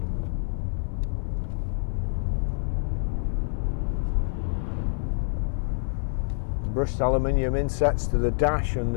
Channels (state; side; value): silent; right; digital silence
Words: Brushed aluminium insets to the dash and